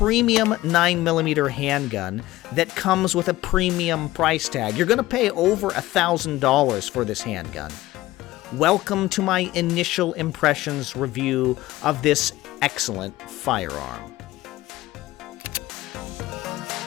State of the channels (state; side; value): quieter; right; 17.1 dB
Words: 9mm handgun that comes with a premium price tag. You're going to pay over $1,000 for this handgun. Welcome to my initial impressions review of this excellent firearm.